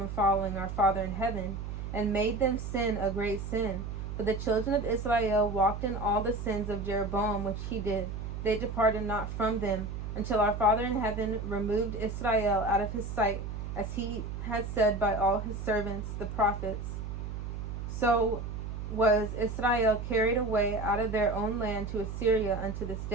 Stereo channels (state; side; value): noise; right; hum, 6 dB below the sound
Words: following our Father in heaven, and made them sin a great sin. For the children of Israel walked in all the sins of Jeroboam which he did. They departed not from them, until our Father in heaven removed Israel out of his sight, as he had said by all his servants the prophets. So was Israel carried away out of their own land to Assyria unto this